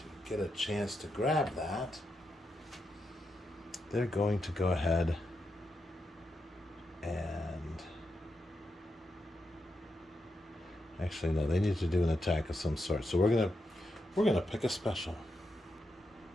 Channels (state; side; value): normal; both; correlation 0.85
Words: get a chance to grab that, they're going to go ahead and actually no, they need to do an attack of some sort. So we're gonna pick a special.